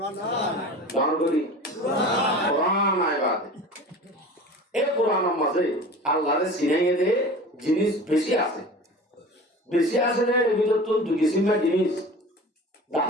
কোরআন করি কোরআন আইবাদ এই কোরআনের মাঝে আল্লাহরে চিনাইয়ে দে জিনিস বেশি আছে, বেশি আছে রে এর ভিতর তো দুই কিসিমের জিনিস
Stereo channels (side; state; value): both; normal; correlation 0.37